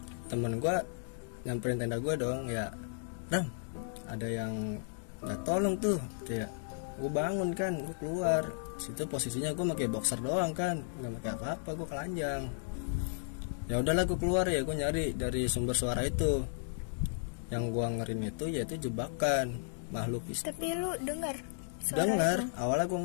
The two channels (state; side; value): silent; right; digital silence